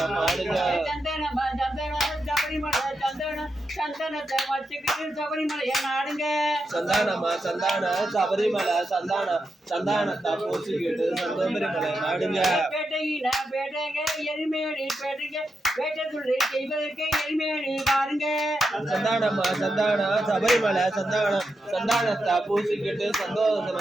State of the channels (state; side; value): normal; both; correlation 0.86